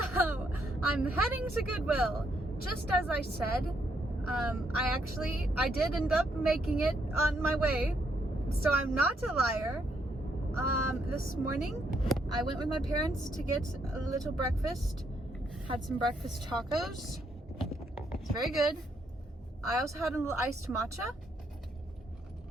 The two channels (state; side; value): normal; both; correlation 0.75